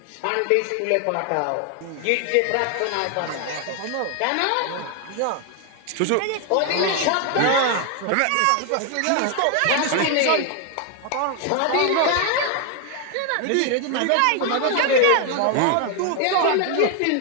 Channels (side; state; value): both; different; correlation 0.00